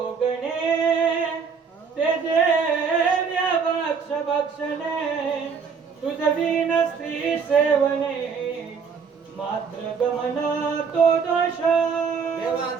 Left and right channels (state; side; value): quieter; left; 5.9 dB